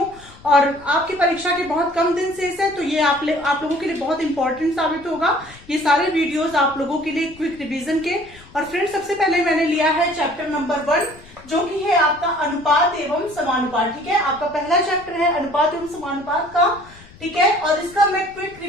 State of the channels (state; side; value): noise; left; rumble, 23 dB below the sound